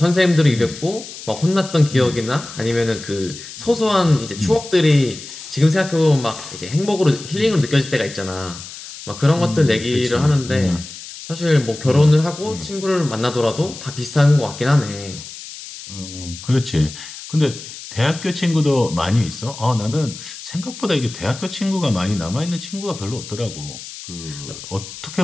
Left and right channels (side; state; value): left; noise; hiss, 13 dB below the sound